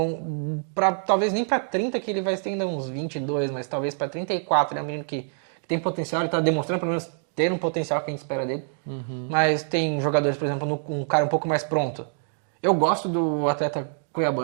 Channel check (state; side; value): silent; left; digital silence